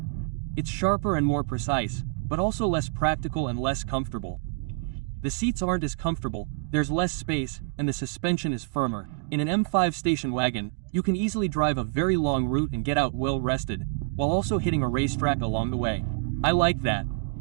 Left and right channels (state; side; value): quieter; left; 28.2 dB